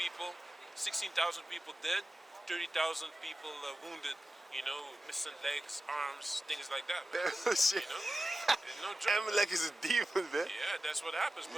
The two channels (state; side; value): normal; both; correlation 0.94